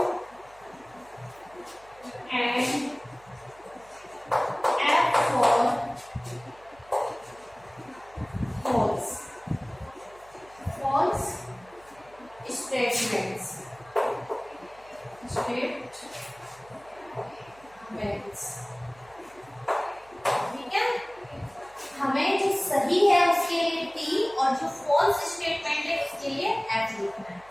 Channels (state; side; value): noise; right; hum, 27 dB below the sound